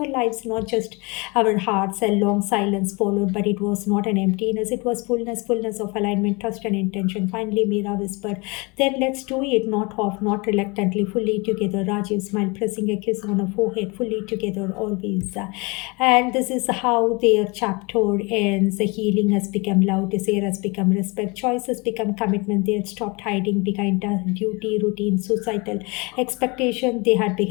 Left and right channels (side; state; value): right; quieter; 27.9 dB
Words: lives, not just our hearts. A long silence followed, but it was not an emptiness, it was fullness of alignment, trust, and intention. Finally, Meera whispered, then let's do it, not half, not reluctantly, fully together. Rajiv smiled, pressing a kiss on her forehead, fully together, always. And this is how their chapter ends. The healing has become love, desire has become respect, choice has become commitment. They had stopped hiding behind duty, routine, societal expectation. They had